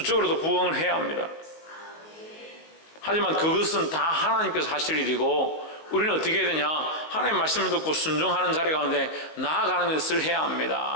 부흥을 해야 합니다. 하지만 그것은 다 하나님께서 하실 일이고 우리는 어떻게 해야 되냐? 하나님의 말씀을 듣고 순종하는 자리 가운데 나아가는 것을 해야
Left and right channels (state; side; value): late; right; 19 ms